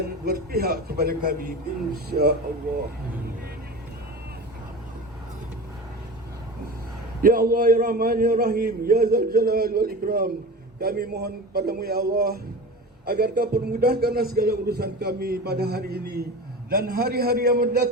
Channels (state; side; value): normal; both; correlation 0.31